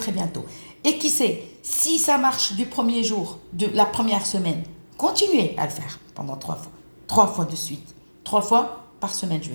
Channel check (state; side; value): inverted; both; correlation -1.00